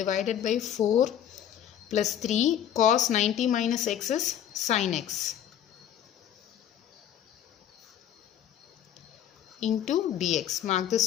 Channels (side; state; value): right; quieter; 10.2 dB